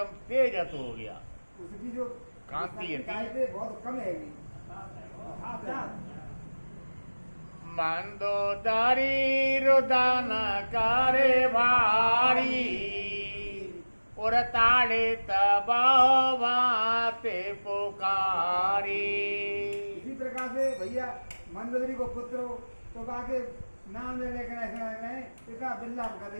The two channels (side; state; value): both; inverted; correlation -1.00